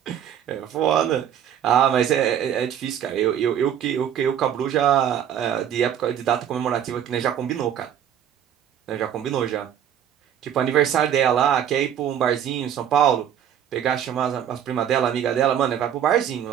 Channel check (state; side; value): quieter; left; 9.5 dB